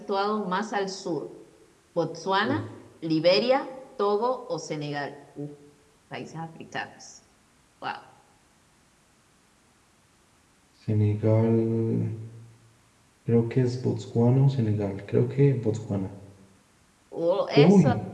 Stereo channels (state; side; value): identical; both; correlation 1.00